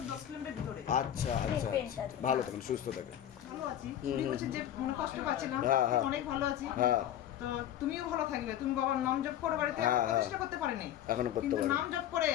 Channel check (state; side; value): quieter; right; 11.2 dB